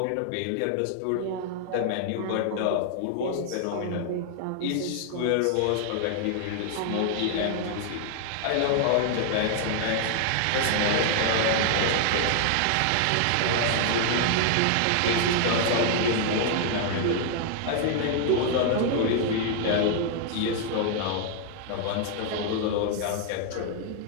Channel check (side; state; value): both; different; correlation 0.00